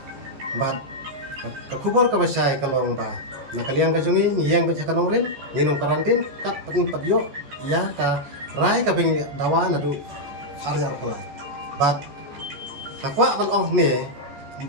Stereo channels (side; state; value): left; late; 14 ms